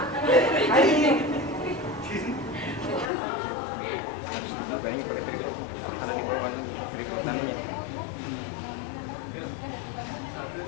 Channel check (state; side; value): drops out; right; at 3.1 s